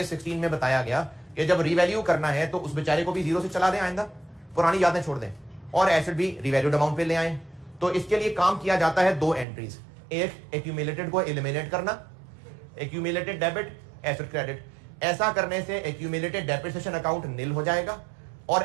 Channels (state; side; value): drops out; left; at 9.5 s